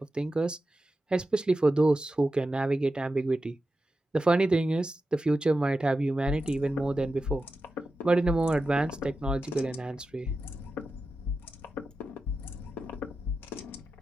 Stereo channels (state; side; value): normal; both; correlation 0.91